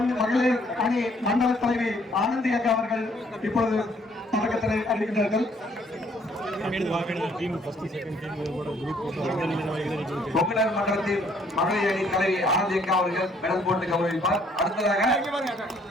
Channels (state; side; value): normal; both; correlation 0.64